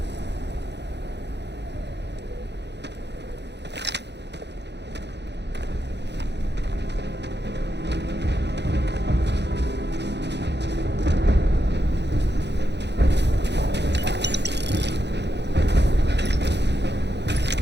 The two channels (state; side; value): late; left; 0.50 ms